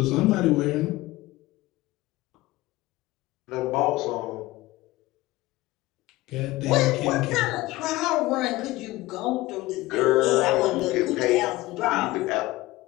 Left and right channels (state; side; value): quieter; right; 18.8 dB